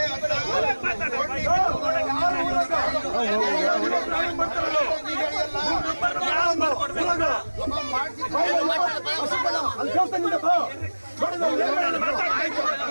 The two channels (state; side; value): inverted; both; correlation -1.00